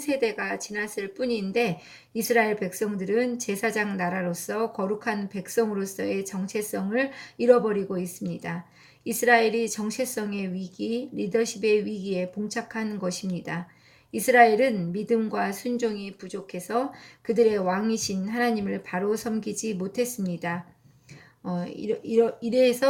지났을 뿐인데 이스라엘 백성들은 제사장 나라로서 거룩한 백성으로서의 정체성을 잃어버리고 있습니다. 이스라엘이 정체성의 위기, 리더십의 위기에 봉착한 것입니다. 이스라엘은 믿음과 순종이 부족해서 그들의 왕이신 하나님을 바로 섬기지 못했습니다.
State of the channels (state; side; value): identical; both; correlation 1.00